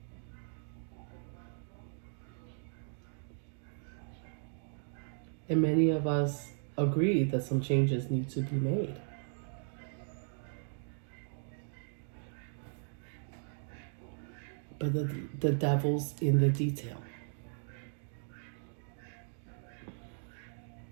And many of us agree that some changes need to be made. But the devil's in the detail.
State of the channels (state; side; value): silent; left; digital silence